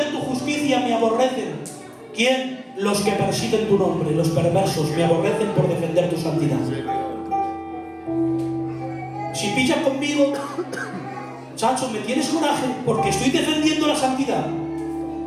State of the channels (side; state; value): both; identical; correlation 1.00